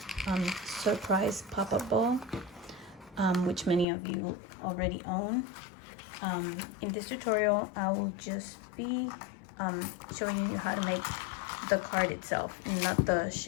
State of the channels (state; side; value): drops out; right; at 3.9 s